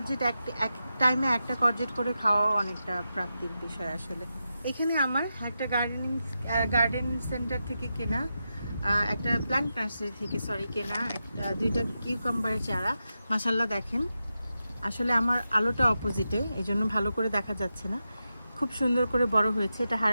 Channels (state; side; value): inverted; both; correlation -0.89